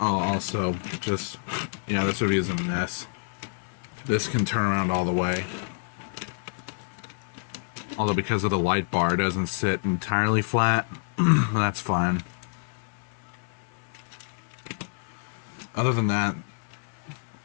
also just, yeah, this review is a mess. This can turn around all the way. Although because of the light bar, it doesn't sit entirely flat. That's fine. other than that,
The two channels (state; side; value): silent; right; digital silence